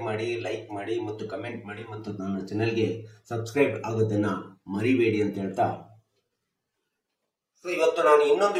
ಮಾಡಿ, ಲೈಕ್ ಮಾಡಿ ಮತ್ತು ಕಮೆಂಟ್ ಮಾಡಿ ಮತ್ತು ನನ್ನ ಚಾನಲ್ಗೆ ಸಬ್ಸ್ಕ್ರೈಬ್ ಆಗೋದನ್ನ ಮರಿಬೇಡಿ ಅಂತ ಹೇಳ್ತಾ, ಸೊ ಇವತ್ತು ನಾನು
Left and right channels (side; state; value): both; identical; correlation 1.00